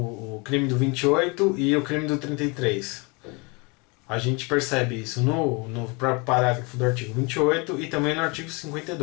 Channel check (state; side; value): quieter; right; 29.3 dB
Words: crime do 28 e o crime do 33? A gente percebe isso no parágrafo do artigo 28 e também no artigo